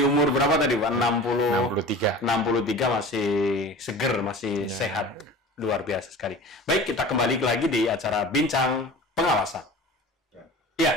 umur berapa tadi Pak? 63. 63 masih seger, masih sehat. Luar biasa sekali. Baik, kita kembali lagi di acara Bincang Pengawasan.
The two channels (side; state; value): both; normal; correlation 0.38